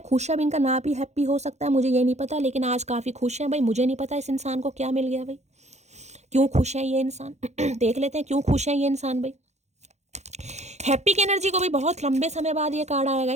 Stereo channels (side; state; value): left; late; 0.33 ms